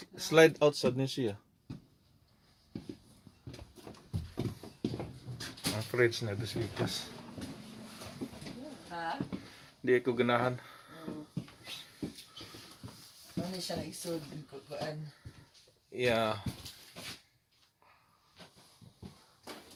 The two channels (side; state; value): both; identical; correlation 1.00